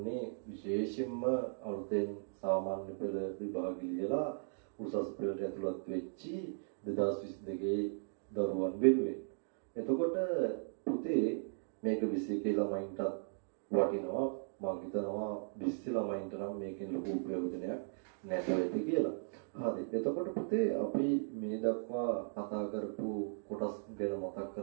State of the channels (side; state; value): left; silent; digital silence